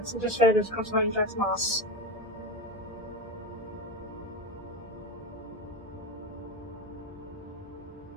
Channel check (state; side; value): normal; both; correlation 0.19